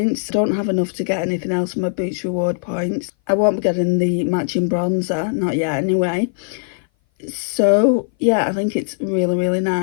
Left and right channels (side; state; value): right; silent; 58 dB below the other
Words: I don't have enough to get anything else from my Boots Reward points. I won't be getting the matching bronzer, not yet anyway. So yeah, I think it's really, really